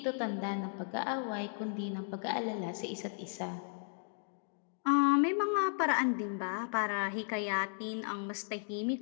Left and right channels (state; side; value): silent; right; digital silence